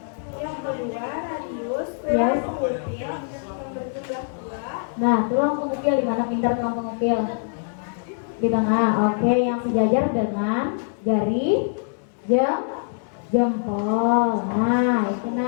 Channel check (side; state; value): right; silent; digital silence